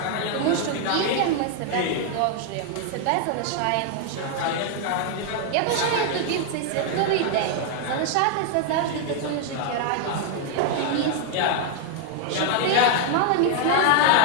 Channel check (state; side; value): different; both; correlation 0.00